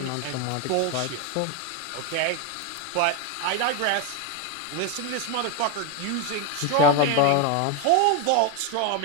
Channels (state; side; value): different; both; correlation 0.02